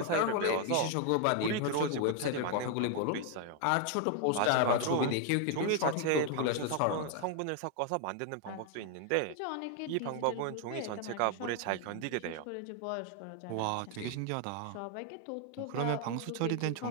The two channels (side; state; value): both; different; correlation 0.01